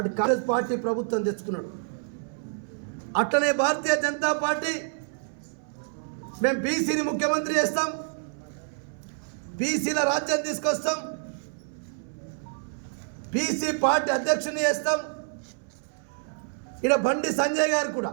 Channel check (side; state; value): left; silent; 60 dB below the other